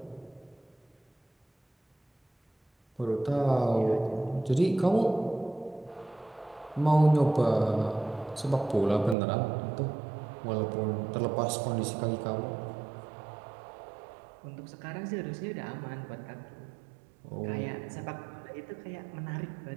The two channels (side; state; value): left; drops out; at 9.2 s